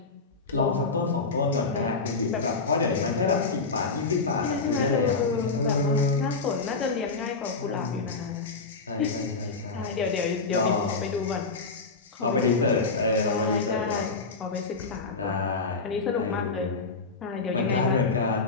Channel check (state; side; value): quieter; right; 4.1 dB